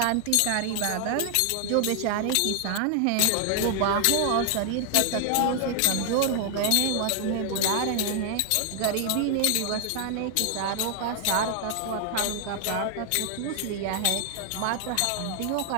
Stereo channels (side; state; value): both; different; correlation 0.00